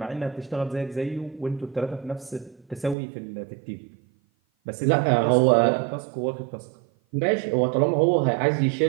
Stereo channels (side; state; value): left; drops out; at 3.0 s